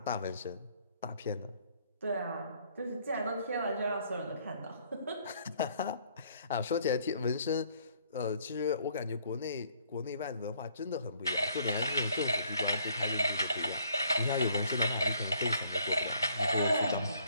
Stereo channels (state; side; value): inverted; both; correlation -0.64